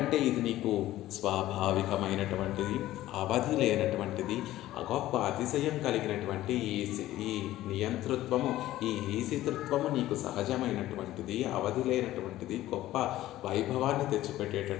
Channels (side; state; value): right; quieter; 15.0 dB